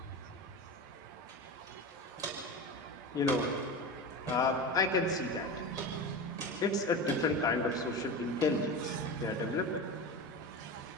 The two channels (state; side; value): normal; both; correlation 0.26